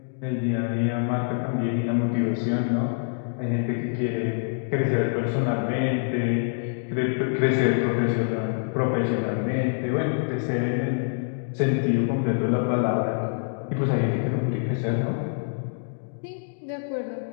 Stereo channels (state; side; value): silent; right; digital silence